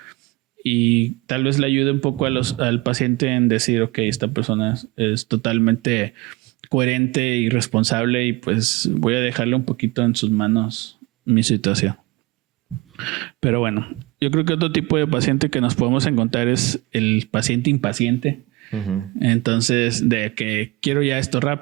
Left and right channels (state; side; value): quieter; left; 22.6 dB